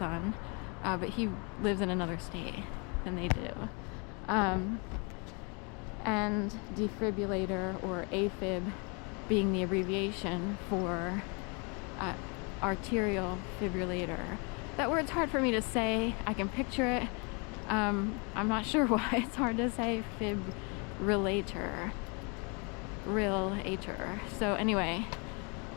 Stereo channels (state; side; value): quieter; right; 33.3 dB